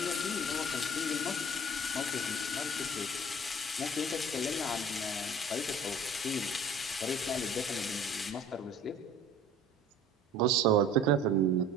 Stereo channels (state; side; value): normal; both; correlation 0.47